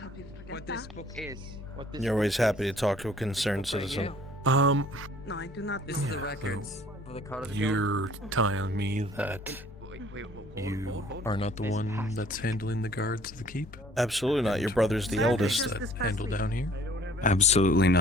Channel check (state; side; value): normal; both; correlation 0.55